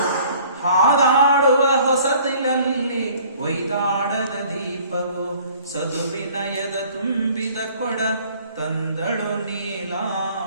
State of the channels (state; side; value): inverted; both; correlation -0.54